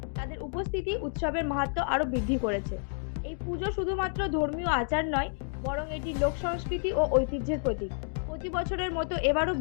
তাদের উপস্থিতি উৎসবের মাহাত্ম্য আরও বৃদ্ধি করেছে। এই পুজো শুধুমাত্র ধর্মীয় আচার নয়, বরং এটি লোক সংস্কৃতি ও ঐতিহ্যের প্রতীক। প্রতি বছরের মতো এবারও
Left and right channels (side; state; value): right; silent; 58 dB below the other